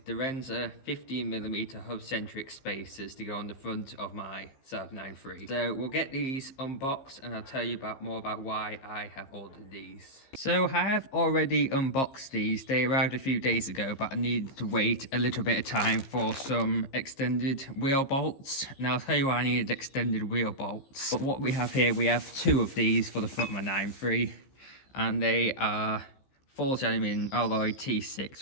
Direnza 15mm Hubcentric spacers to go on the front of my Saab 9-3. So we'll get these unboxed and I'll tell you more about why I have ordered these. So I have already unboxed these. They arrived a few days ago, but I needed to wait a little bit of time for some extended wheel bolts. Now I'll tell you why I needed extended wheel bolts. But what we have here, we have two of these for the front of my 9-3, and they are forged aluminium alloy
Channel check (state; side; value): late; right; 15 ms